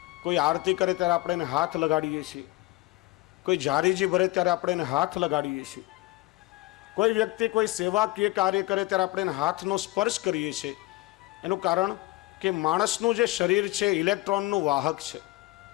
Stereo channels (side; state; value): right; quieter; 19.7 dB